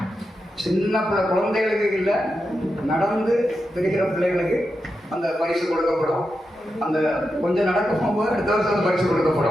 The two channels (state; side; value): normal; both; correlation 0.88